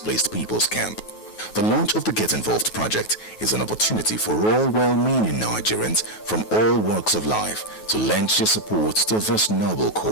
people's camp. The launch of the Get Involved project is an opportunity for all well-meaning Nigerians from all walks of life to lend their support to this noble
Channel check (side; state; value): right; late; 9.3 ms